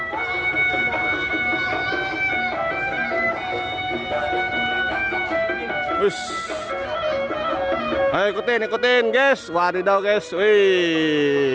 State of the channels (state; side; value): identical; both; correlation 1.00